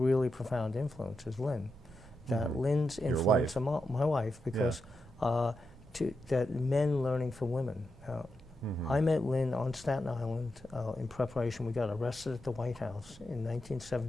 profound influence, is Lynn. That mm-hmm. Lynn's influence on my wife, because that men learning from women. Mm-hmm. I met Lynn on Staten Island in preparation. We got arrested at the White House in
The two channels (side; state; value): both; normal; correlation 0.87